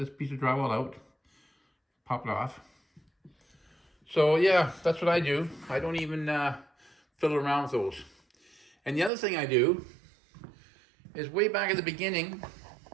piece of drywall out. Pop it off. So yeah, that's what I do. I don't even fiddle around with those. And the other thing I do is way back at the beginning,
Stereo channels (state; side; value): drops out; left; at 9.1 s